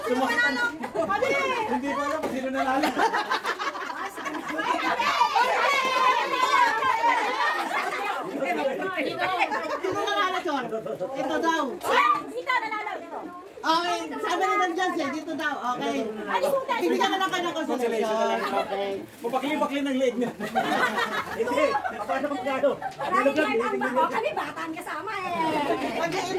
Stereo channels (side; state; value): both; identical; correlation 1.00